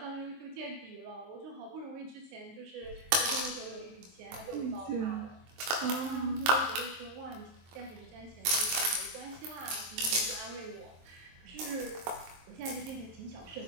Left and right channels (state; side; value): late; left; 23 ms